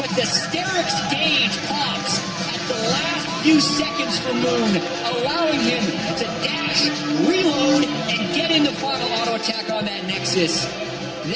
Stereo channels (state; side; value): identical; both; correlation 1.00